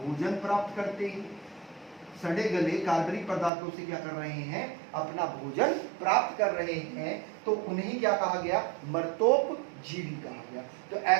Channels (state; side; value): drops out; left; at 3.5 s